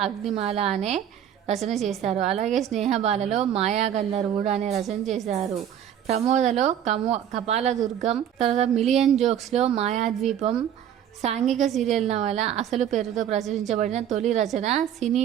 అగ్నిమాల అనే రచన చేశారు. అలాగే స్నేహబాలలో మాయా గంధర్వుడు అనే రచన చేశారు. ప్రమోదలో కపాలదుర్గం, తర్వాత మిలియన్ జోక్స్లో మాయాద్వీపం, సాంఘిక సీరియల్ నవల అసలు పేరుతో ప్రచురించబడిన తొలి రచన సినీ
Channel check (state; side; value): quieter; left; 9.9 dB